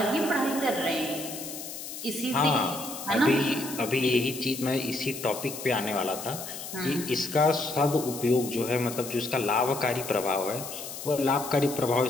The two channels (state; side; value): noise; left; hiss, 9 dB below the sound